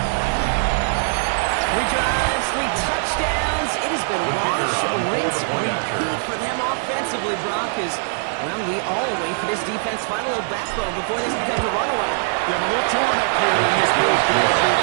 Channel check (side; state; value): left; silent; digital silence